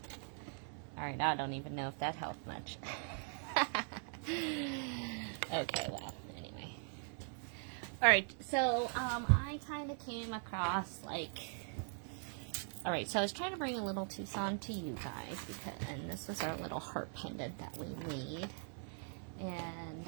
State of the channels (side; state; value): left; silent; 50 dB below the other